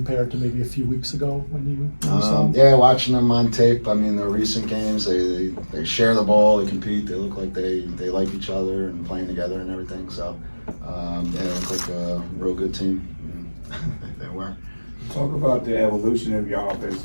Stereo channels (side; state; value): both; inverted; correlation -1.00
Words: to maybe a few weeks ago when you saw them? Yeah, watching them on tape. I mean, the recent games, they share the ball, they compete, they look like they like each other and playing together and everything. So they look like a real good team. They were. Talk about the evolution of your offense